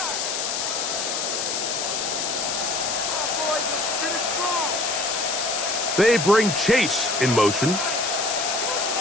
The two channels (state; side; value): noise; left; hiss, 1 dB below the sound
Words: They bring Chase in motion.